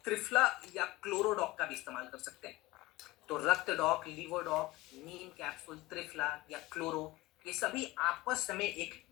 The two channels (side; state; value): right; quieter; 19.3 dB